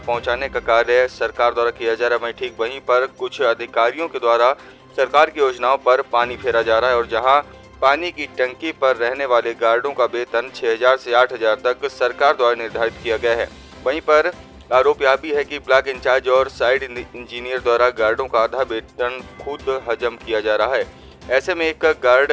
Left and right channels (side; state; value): both; identical; correlation 1.00